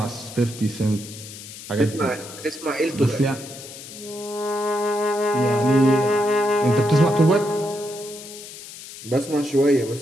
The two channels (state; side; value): noise; left; hiss, 14 dB below the sound